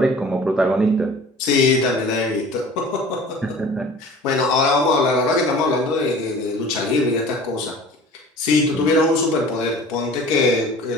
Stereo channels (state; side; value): normal; both; correlation 0.44